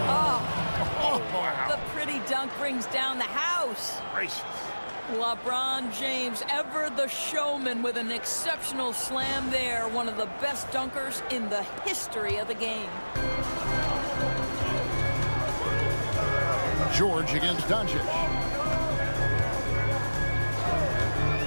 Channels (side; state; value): both; inverted; correlation -1.00